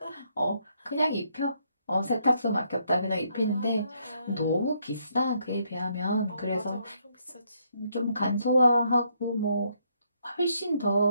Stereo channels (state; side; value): inverted; both; correlation -0.73